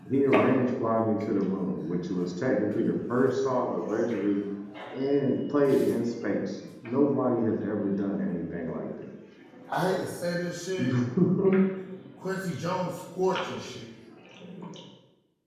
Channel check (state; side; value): identical; both; correlation 1.00